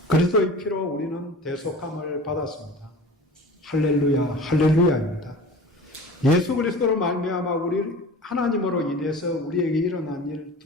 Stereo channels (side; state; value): both; normal; correlation 0.39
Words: 그리스도의 피로 우리는 대속함을 받았습니다. 할렐루야, 할렐루야입니다. 예수 그리스도로 말미암아 우리 하나님으로 인해서 우리에게 일어난 일